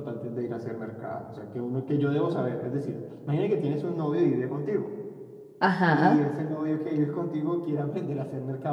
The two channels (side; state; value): both; identical; correlation 1.00